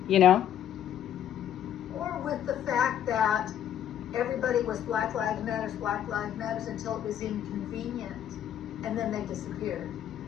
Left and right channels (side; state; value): right; quieter; 10.4 dB